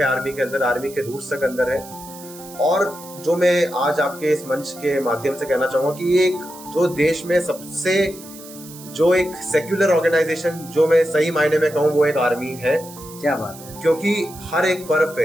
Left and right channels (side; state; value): right; noise; hiss, 17 dB below the sound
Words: आर्मी के अंदर, आर्मी के रूट्स तक अंदर है। और जो मैं आज आपके इस मंच के माध्यम से कहना चाहूंगा कि एक जो देश में सबसे जो एक सेक्युलर ऑर्गेनाइजेशन जो मैं सही मायने में कहूँ वो एक आर्मी है। क्या बात है। क्योंकि हर एक पर्व